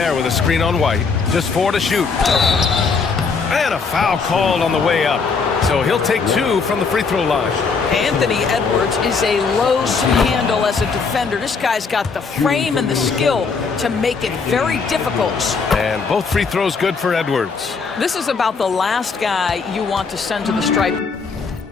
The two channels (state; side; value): quieter; right; 5.0 dB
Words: with a screen on White. Just 4 to shoot. And a foul called on the way up. So he'll take 2 from the free throw line. Anthony Edwards is a load to handle as a defender. This guy's got the frame and the skill to make it very difficult. And both free throws good for Edwards. This is about the last guy you want to send to the stripe.